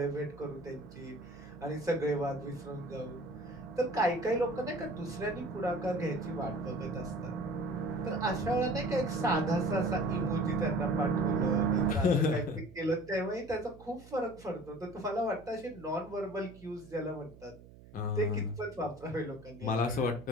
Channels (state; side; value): noise; right; hum, 20 dB below the sound